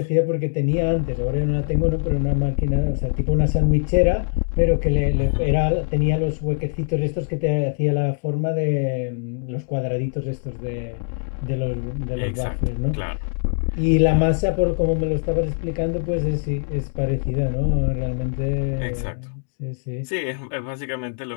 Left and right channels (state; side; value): silent; right; digital silence